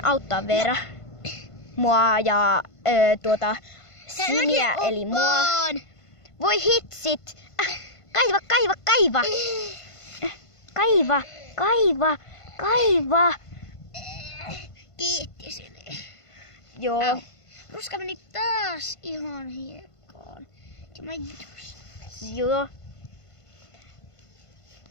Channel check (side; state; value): right; late; 1.5 ms